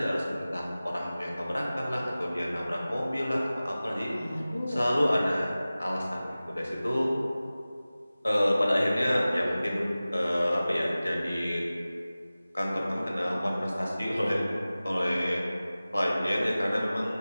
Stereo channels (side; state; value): both; inverted; correlation -0.97